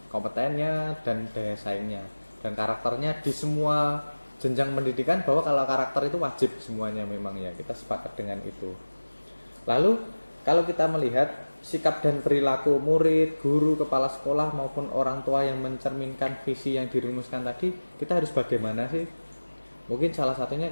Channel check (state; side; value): inverted; both; correlation -1.00